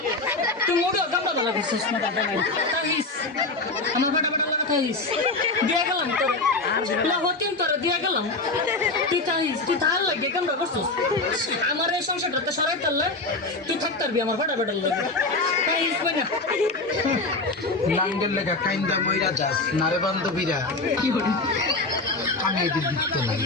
তুই মোড়ে আমরা ভালো করছিস না দাদা নাই তাইস আমার ফাটা ফাটা লাগা তাইস দিয়া গেলাম তোর হতিন তোরে দিয়া গেলাম তুই তাইস তুই তার লাগে কেমন করছিস আমার এই সংসারটা সরাই তারলে তুই থাকতে পারবি আমার ফাটা ফাটা লাগে তাইস না নাঙ্গের লেখা কাইন্দা মইরা যাস নারে বান্ধবীরা কি বলি আমি এদের দিতে নাই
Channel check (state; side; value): quieter; right; 3.3 dB